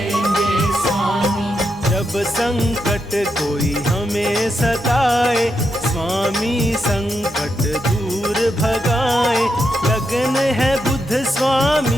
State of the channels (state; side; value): normal; both; correlation 0.83